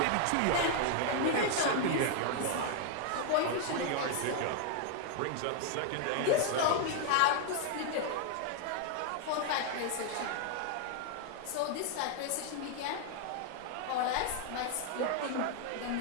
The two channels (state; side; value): different; both; correlation 0.00